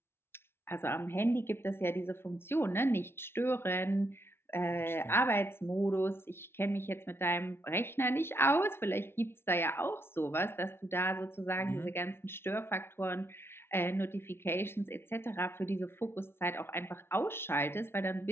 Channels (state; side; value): late; right; 0.12 ms